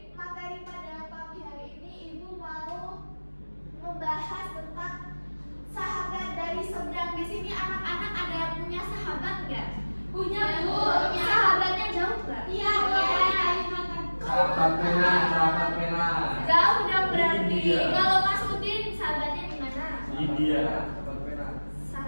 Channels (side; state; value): both; inverted; correlation -1.00